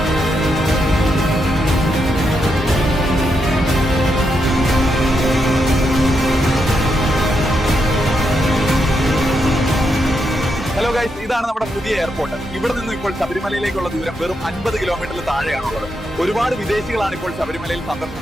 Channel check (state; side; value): normal; both; correlation 0.82